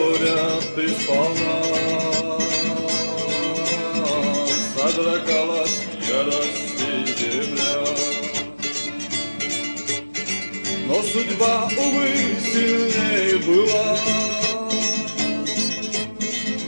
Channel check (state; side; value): inverted; both; correlation -1.00